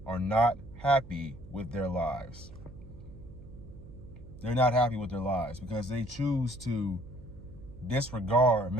are not happy with their lives. They're not happy with their lives because they choose to disregard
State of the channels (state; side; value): noise; right; hum, 17 dB below the sound